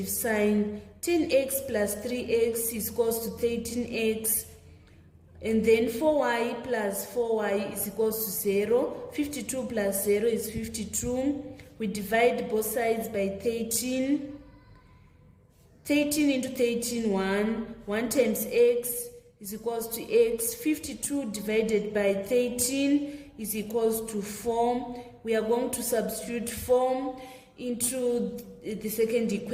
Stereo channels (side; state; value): both; identical; correlation 1.00